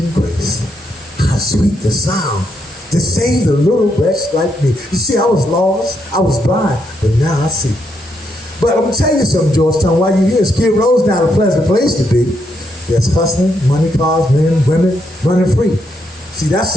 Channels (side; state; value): both; normal; correlation 0.77